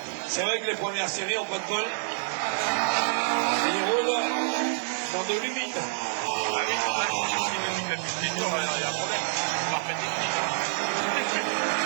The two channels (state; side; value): silent; left; digital silence